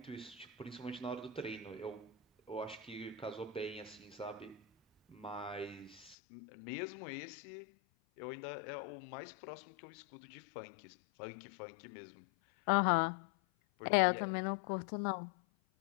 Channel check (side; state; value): right; drops out; at 6.2 s